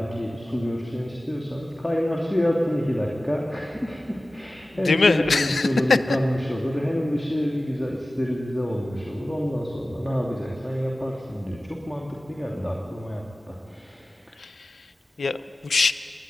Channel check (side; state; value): both; normal; correlation 0.96